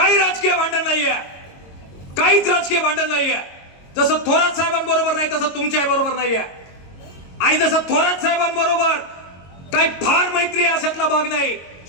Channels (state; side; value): late; right; 22 ms